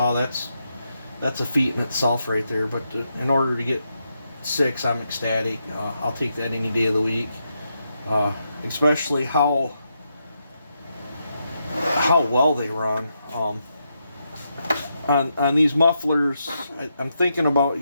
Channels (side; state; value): both; inverted; correlation -0.83